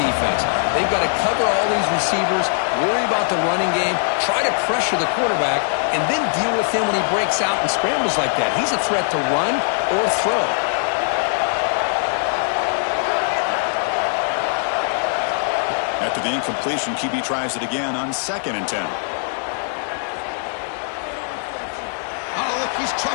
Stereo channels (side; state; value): right; silent; digital silence